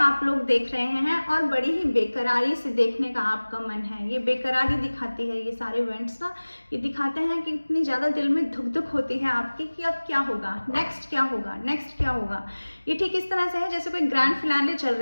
लोग देख रहे हैं और बड़ी ही बेकरारी से देखने का आपका मन है। ये बेकरारी दिखाती है, ये सारे इवेंट्स ना ये दिखाते हैं कि इतनी ज़्यादा दिल में धुक धुक होती है आपकी कि अब क्या होगा, नेक्स्ट क्या होगा, नेक्स्ट क्या होगा। ये ठीक इस तरह से है जैसे कोई ग्रैंड फिनाले चल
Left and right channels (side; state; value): both; inverted; correlation -1.00